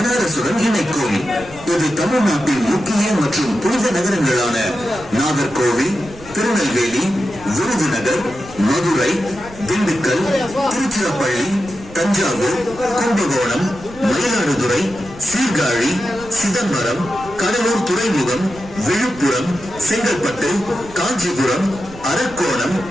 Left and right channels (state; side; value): noise; right; rumble, 19 dB below the sound